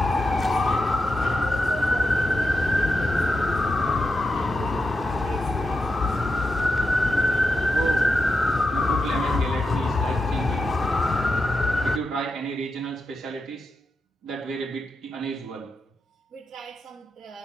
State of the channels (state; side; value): normal; both; correlation 0.87